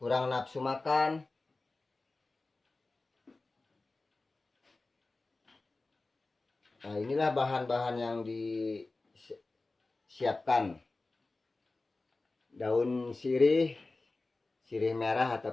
nafsu makan. Nah, inilah bahan-bahan yang disiapkan. Daun sirih merah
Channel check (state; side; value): quieter; right; 3.3 dB